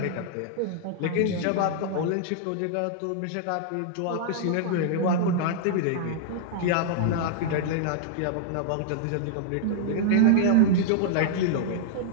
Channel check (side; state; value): both; different; correlation -0.01